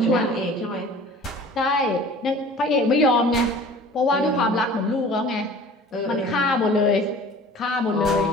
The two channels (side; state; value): both; normal; correlation 0.45